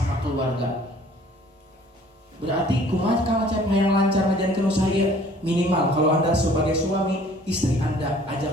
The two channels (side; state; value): both; normal; correlation 0.54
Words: keluarga. Berarti kumaha Kang Acep yang lancar ngajarkeun usaha ieu? Minimal kalau Anda sebagai suami, istri Anda